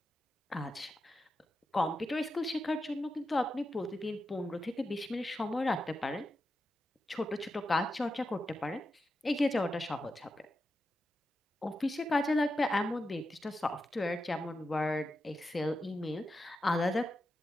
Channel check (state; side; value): normal; both; correlation 0.89